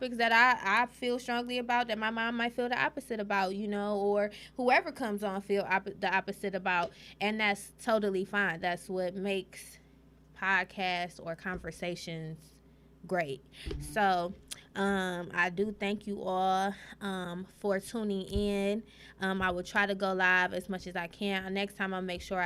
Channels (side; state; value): both; identical; correlation 1.00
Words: that I feel strongly about that my mom might feel the opposite about, you know, or whoever comes on feel the opposite about, and that's totally fine. That's what makes podcasts or conversations great. So I do thank you all for tuning in. I will try to go live as much as I can. Next time I'll make sure